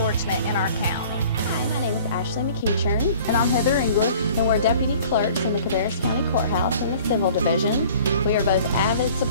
in our county. Hi, my name is Ashley McEachern. And I'm Heather English. And we're deputy clerks in the Cabarrus County Courthouse in the Civil Division. We are both avid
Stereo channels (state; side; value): inverted; both; correlation -0.49